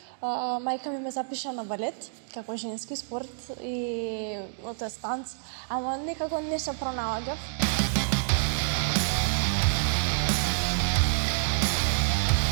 мајка ми ме запиша на балет како женски спорт и тоест танц, ама некако не се пронаоѓав.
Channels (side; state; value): left; silent; digital silence